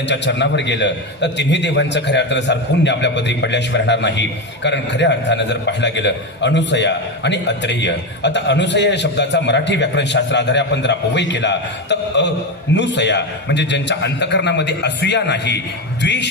चरणावर गेलं तर तिन्ही देवांचं खऱ्या अर्थानं सार पुण्य आपल्या पदरी पडल्याशिवाय राहणार नाही. कारण खऱ्या अर्थानं जर पाहायला गेलं अनुसया आणि अत्रेय, आता अनुसया या शब्दाचा मराठी व्याकरणशास्त्र आधारे आपण जर अपव्यय केला तर अनुसया म्हणजे ज्यांच्या अंतकरणामध्ये असूया नाही,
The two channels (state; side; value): normal; both; correlation 0.14